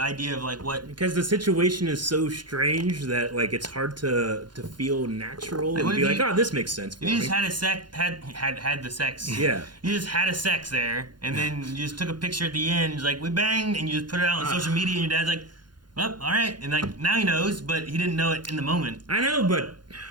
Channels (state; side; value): late; left; 0.71 ms